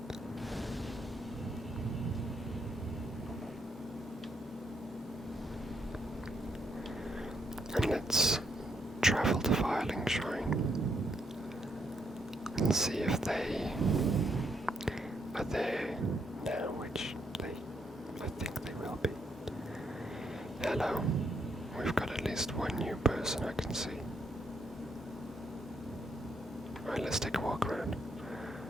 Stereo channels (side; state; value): both; normal; correlation 0.75